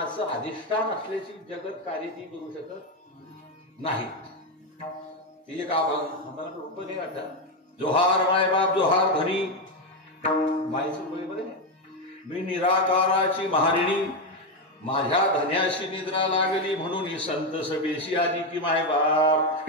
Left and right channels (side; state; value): both; normal; correlation 0.08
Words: अधिष्ठान असल्याची जगत कार्य ती करू शकत नाही. ती एक आम्हाला रूप नाही वाटत. जोहार मायबाप जोहार धनी. मायचं बरोबर आहे. मी निराकाराची महारिणी माझ्या धन्याशी निद्रा लागली म्हणून ही संत सभेशी आली की